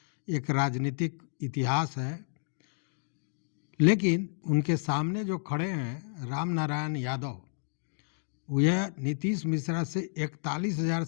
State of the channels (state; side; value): silent; right; digital silence